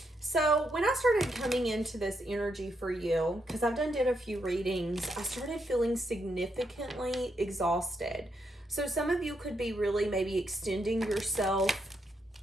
So when I started coming into this energy for you, because I've did a few readings, I started feeling significantly exhausted. So some of you could be really maybe extending yourself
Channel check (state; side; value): normal; both; correlation 0.79